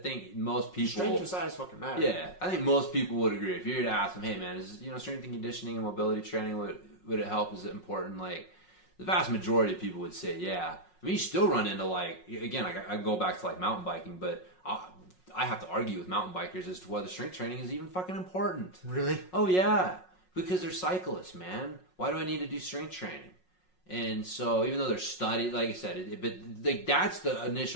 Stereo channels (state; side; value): late; right; 5.5 ms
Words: most people. Strength and size fucking matter. Yeah, I think most people would agree. If you were to ask them, hey man, is strength and conditioning and mobility training would it help? Is it important? Like the vast majority of people would say yeah. I mean, you still run into like again, like I go back to like mountain biking, but. I have to argue with mountain bikers as to whether strength training is even fucking important. Really? Oh, yeah. Because they're cyclists, man. Why do I need to do strength training? And so even though they're studied, like I said, but like that's the